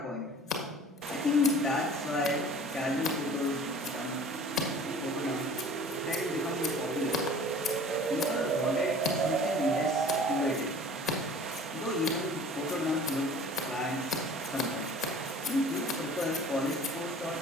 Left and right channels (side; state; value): both; normal; correlation 0.46